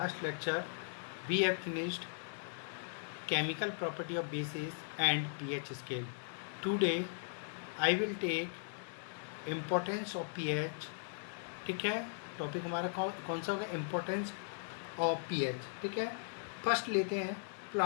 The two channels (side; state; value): right; silent; digital silence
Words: lecture we have finished chemical property of bases and pH scale. Today I will take importance of pH. ठीक है, topic हमारा कौन सा होगा? Importance of pH. ठीक है, first लेते हैं